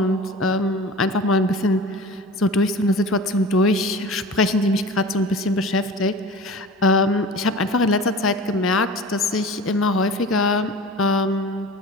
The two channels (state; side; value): normal; both; correlation 0.37